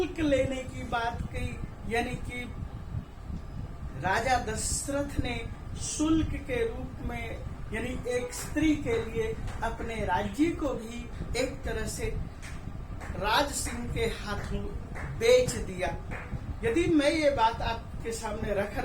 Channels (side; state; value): both; identical; correlation 1.00